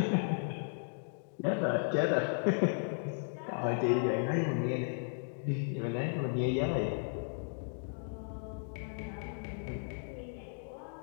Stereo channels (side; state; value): right; silent; digital silence